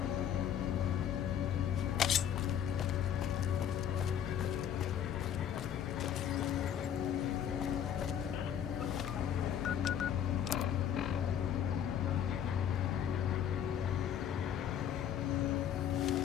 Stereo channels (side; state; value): right; quieter; 9.5 dB